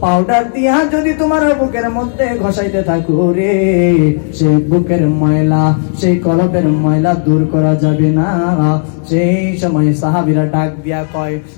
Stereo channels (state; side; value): silent; right; digital silence